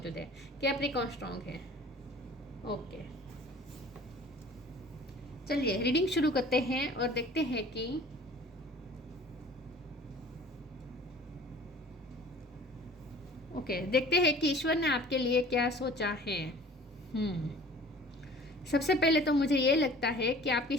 है। कैप्रिकॉन स्ट्रॉन्ग है। ओके, चलिए रीडिंग शुरू करते हैं और देखते हैं कि देखते हैं कि ईश्वर ने आपके लिए क्या सोचा है। सबसे पहले तो मुझे ये लगता है कि आपकी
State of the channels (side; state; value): both; normal; correlation 0.46